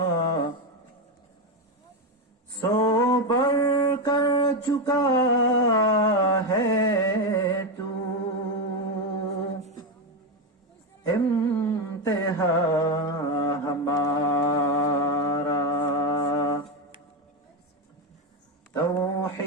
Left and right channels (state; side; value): normal; both; correlation 0.10